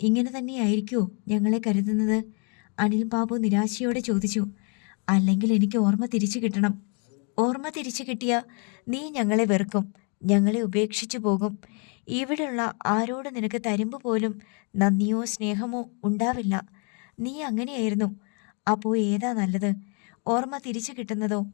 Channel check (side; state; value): right; quieter; 36.8 dB